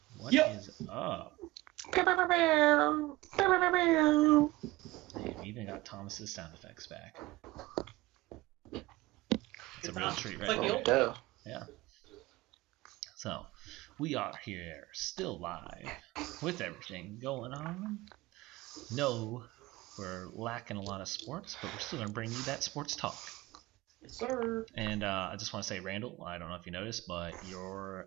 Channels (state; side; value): quieter; left; 19.7 dB